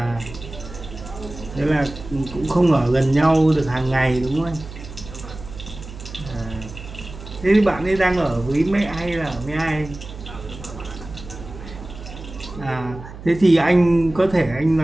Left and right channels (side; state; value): right; noise; hum, 14 dB below the sound